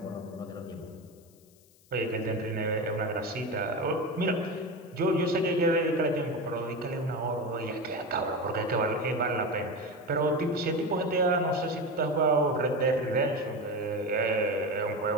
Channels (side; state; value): left; noise; hiss, 29 dB below the sound